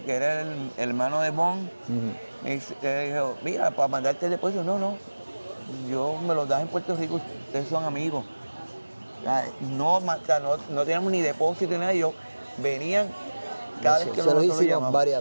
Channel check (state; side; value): inverted; both; correlation -1.00